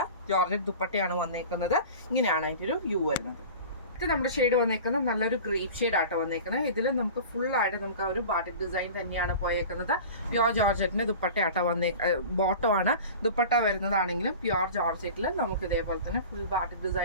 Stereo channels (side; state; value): both; inverted; correlation -0.37